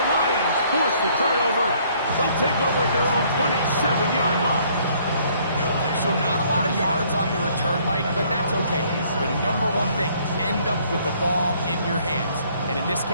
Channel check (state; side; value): inverted; both; correlation -0.62